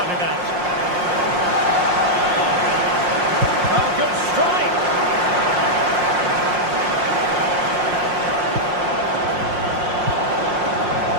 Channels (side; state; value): left; late; 5.6 ms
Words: it out. Oh, good strike.